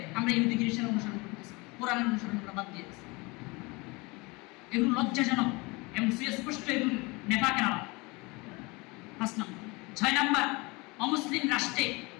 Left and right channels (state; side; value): quieter; right; 25.7 dB